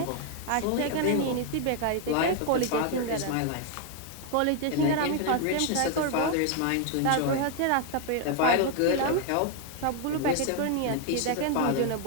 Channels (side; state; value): both; different; correlation 0.00